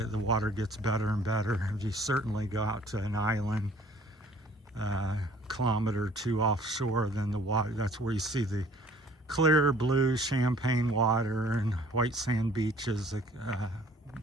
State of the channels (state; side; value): normal; both; correlation 0.55